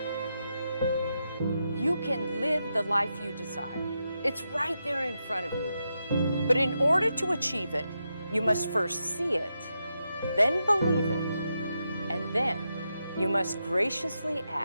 You can live the life you desire. It's right there in front of you. But in order to achieve it, you must first see it, then believe it, and then you must graciously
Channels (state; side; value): inverted; both; correlation -0.86